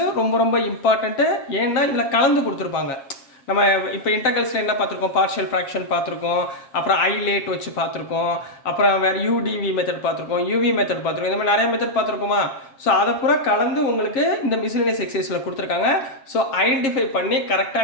ரொம்ப இம்பார்ட்டண்ட்டு. ஏன்னா இதில் கலந்து கொடுத்துருப்பாங்க. நம்ம இப்போ இன்டெகிரல்ஸில் என்ன பார்த்துருக்கோம், பார்ஷியல் ஃப்ராக்ஷன் பார்த்துருக்கோம், அப்புறம் ஐலேட் வச்சு பார்த்துருக்கோம், அப்புறம் வேறு யூடிவி மெத்தட் பார்த்துருக்கோம், யூவி மெத்தட் பார்த்துருக்கோம், இந்த மாதிரி நிறைய மெத்தட் பார்த்துருக்கோமா. ஸோ அதை பூரா கலந்து உங்களுக்கு இந்த மிஸ்லேனியஸ் எக்ஸைஸில் கொடுத்துருக்காங்க. ஸோ ஐடென்டிஃபை பண்ணி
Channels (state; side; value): late; right; 7.4 ms